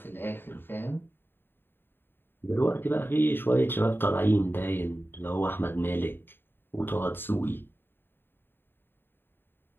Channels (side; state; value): right; late; 0.10 ms